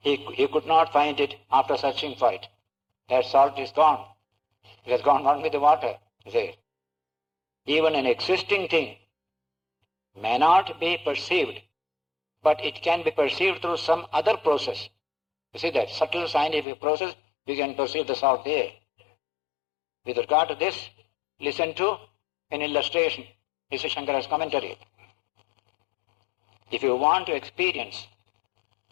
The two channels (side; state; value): right; drops out; at 16.7 s